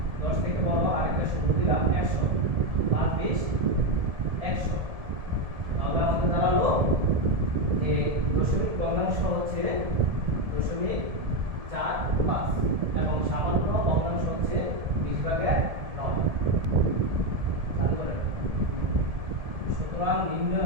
10 থেকে বড়, আরেকটা শূন্য দিলাম 100, 5 20 100। তাহলে আমাদের দাঁড়ালো যে দশমিক ভগ্নাংশ হচ্ছে 0.45 এবং সামান্য ভগ্নাংশ হচ্ছে 20 ভাগে 9। সুতরাং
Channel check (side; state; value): left; late; 1.7 ms